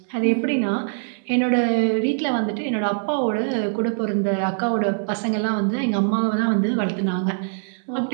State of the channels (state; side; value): silent; left; digital silence